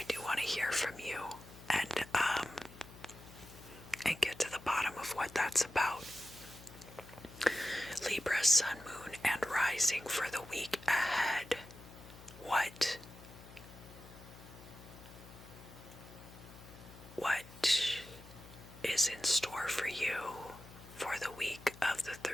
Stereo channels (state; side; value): noise; left; hum, 18 dB below the sound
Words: do want to hear from you and get to the bottom of what that's about. Libra, Sun, Moon, and Rising for the week ahead. What is in store for you for the week of the